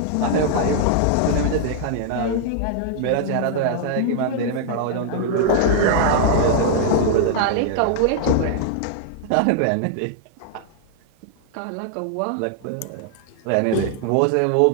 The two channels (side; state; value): both; different; correlation 0.00